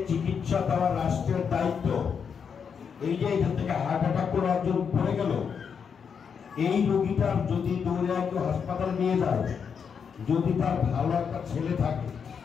চিকিৎসা দেওয়ার রাষ্ট্রের দায়িত্ব। এই যে এখান থেকে হার্ট অ্যাটাক করে একজন পড়ে গেল, এই রোগীটার যদি দৌড়ে কেউ হাসপাতালে নিয়ে যায়, যদি তার ভালো একটা ছেলে থাকে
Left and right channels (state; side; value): quieter; right; 6.7 dB